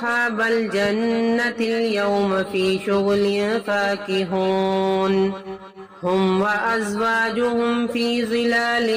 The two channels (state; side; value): identical; both; correlation 1.00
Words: الجنة اليوم في شغل فاكهون هم وأزواجهم في